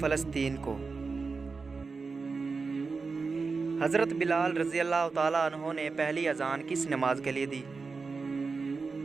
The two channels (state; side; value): quieter; left; 4.5 dB